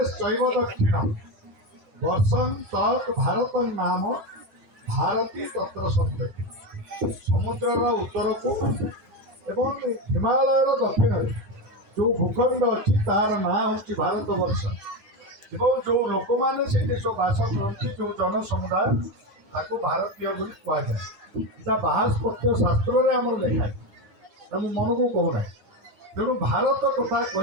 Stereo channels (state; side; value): late; left; 9.6 ms